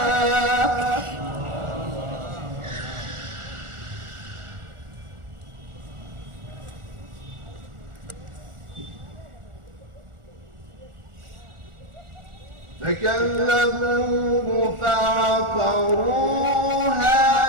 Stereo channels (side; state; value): left; late; 1.4 ms